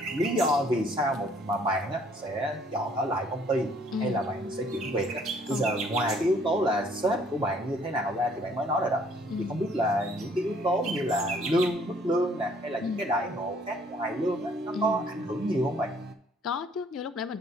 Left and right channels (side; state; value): both; normal; correlation 0.61